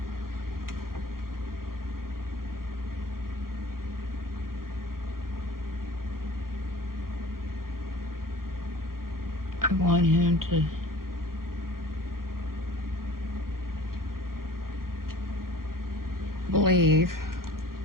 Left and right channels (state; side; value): late; left; 0.92 ms